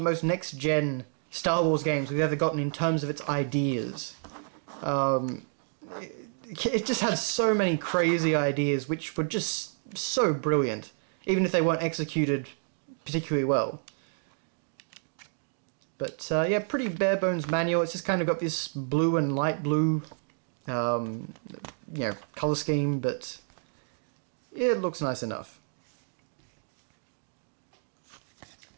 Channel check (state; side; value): silent; left; 58 dB below the other